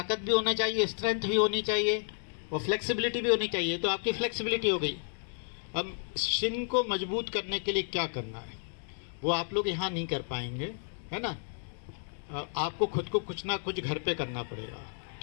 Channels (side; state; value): right; silent; digital silence